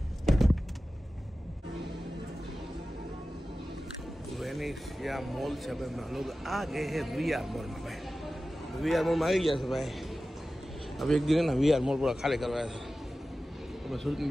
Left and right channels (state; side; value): normal; both; correlation 0.95